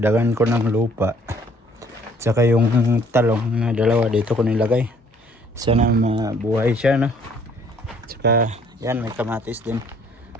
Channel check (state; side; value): normal; both; correlation 0.60